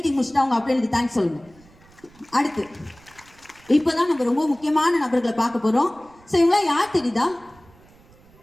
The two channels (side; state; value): right; noise; rumble, 27 dB below the sound